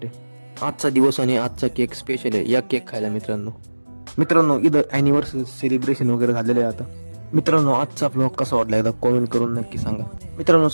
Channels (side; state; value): both; inverted; correlation -1.00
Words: आजचा दिवस आणि आजचा केक स्पेशल आहे. या केक खायला मित्रांनो इथं अॅनिव्हर्सरी सेलिब्रेशन वगैरे झालेलं आहे. आता मित्रांनो, आजचा ब्लॉग कसा वाटला एकदा कॉमेंट करून नक्की सांगा. मित्रांनो,